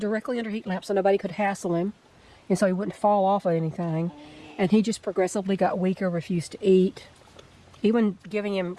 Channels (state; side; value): identical; both; correlation 1.00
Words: under heat lamp so nobody could hassle him, and so he wouldn't fall off of anything. And he just progressively got weaker, refused to eat. Even giving